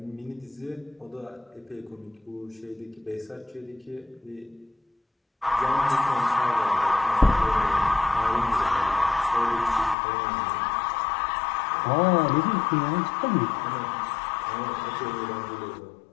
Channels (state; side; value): drops out; right; at 10.0 s